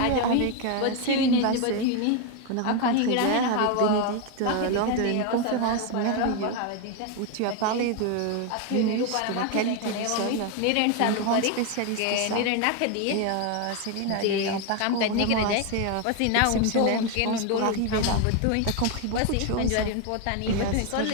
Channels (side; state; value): both; different; correlation 0.01